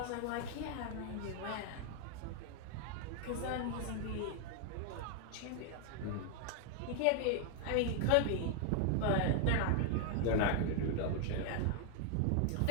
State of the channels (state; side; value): different; both; correlation 0.00